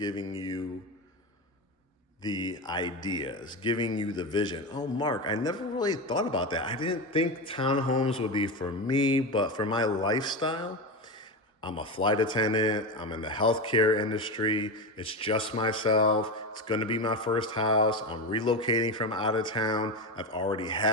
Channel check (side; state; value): both; normal; correlation 0.18